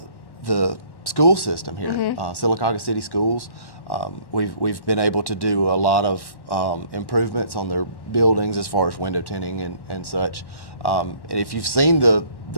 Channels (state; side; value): late; right; 1.1 ms